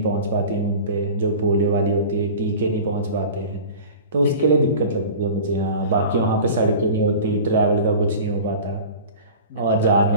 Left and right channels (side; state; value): both; inverted; correlation -0.38